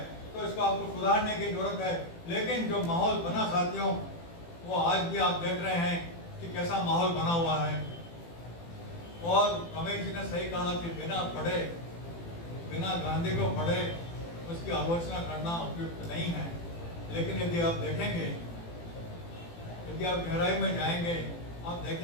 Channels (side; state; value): right; late; 18 ms